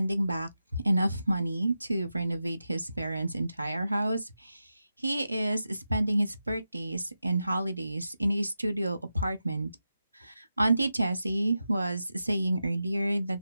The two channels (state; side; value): inverted; both; correlation -0.90